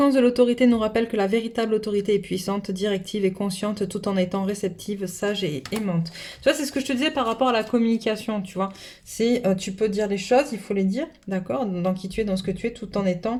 de l'autorité nous rappelle que la véritable autorité est puissante, directive et consciente tout en étant réceptive, sage et aimante. Tu vois, c'est ce que je te disais par rapport à la communication, tu vois. C'est, tu peux dire les choses, il faut les dire, d'accord, dans qui tu es, dans ce que tu es, tout en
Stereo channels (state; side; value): identical; both; correlation 1.00